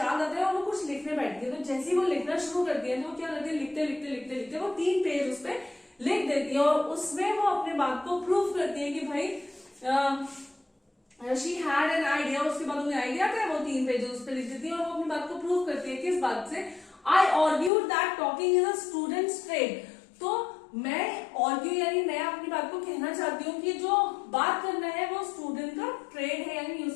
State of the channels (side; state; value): right; drops out; at 17.7 s